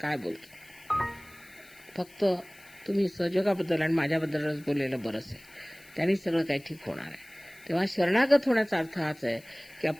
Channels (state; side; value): noise; left; hiss, 25 dB below the sound